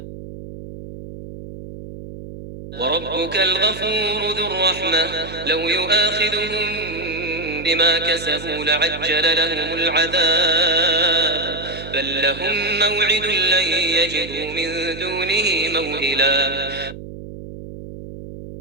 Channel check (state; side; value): noise; right; hum, 12 dB below the sound